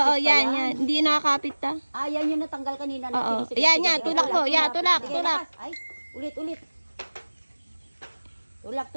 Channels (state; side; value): inverted; both; correlation -1.00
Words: Oo, pa yan. Hindi nakakapit ta. Ah, yan yung natanggal kanina. Oo. Sige, Yan, sige, yan. sige. Tulak mo. Yan, tulak. Sige, Tulak. lakas. Ay, ulit.